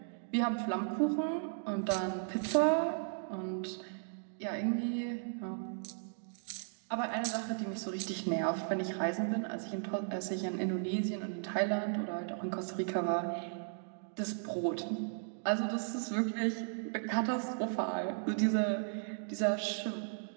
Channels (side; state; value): left; silent; digital silence